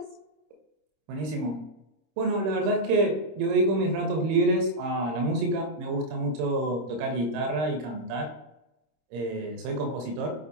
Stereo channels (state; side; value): late; left; 26 ms